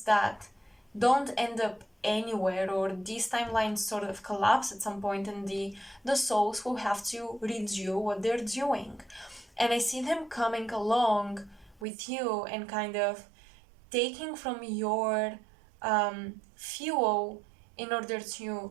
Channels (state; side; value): drops out; left; at 11.9 s